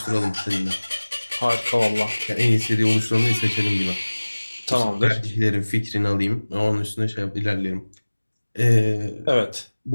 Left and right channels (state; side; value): inverted; both; correlation -1.00